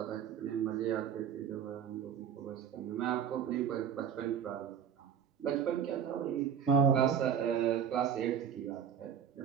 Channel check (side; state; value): left; quieter; 8.2 dB